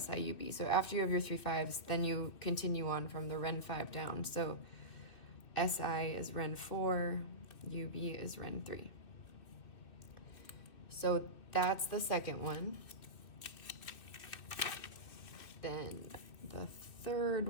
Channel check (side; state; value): right; late; 2.6 ms